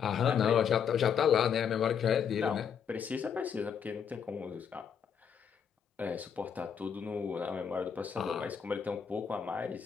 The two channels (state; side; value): quieter; right; 7.5 dB